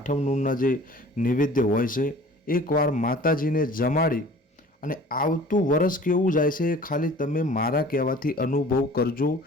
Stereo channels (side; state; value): both; normal; correlation 0.46